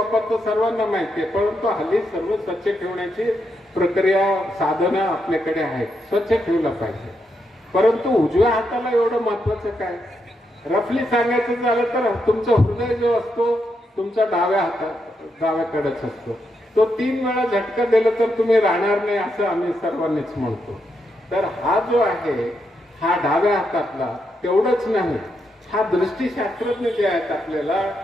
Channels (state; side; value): normal; both; correlation 0.82